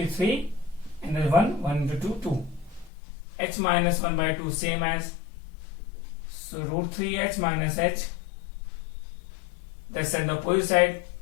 3, and then 1 into 2 2. H minus 1/2 same as, so root 3H minus H, that's on the opposite side,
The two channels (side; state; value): right; drops out; at 2.9 s